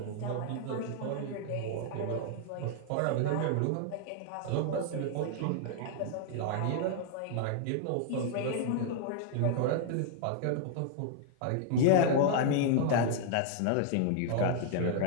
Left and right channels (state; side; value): different; both; correlation 0.00